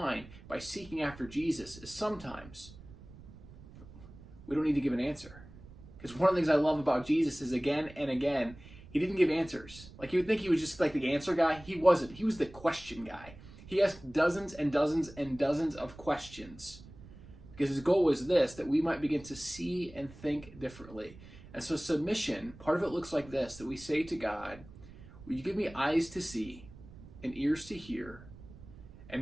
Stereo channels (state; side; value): noise; right; rumble, 18 dB below the sound